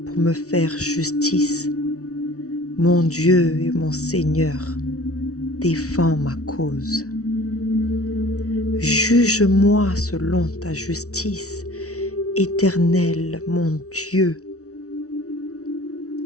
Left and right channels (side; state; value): right; late; 0.65 ms